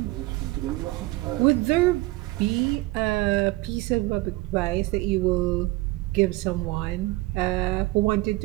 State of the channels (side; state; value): left; quieter; 20.7 dB